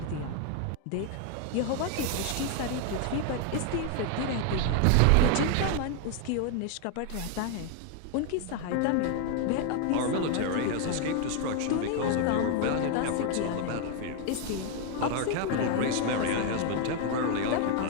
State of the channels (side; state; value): both; different; correlation 0.00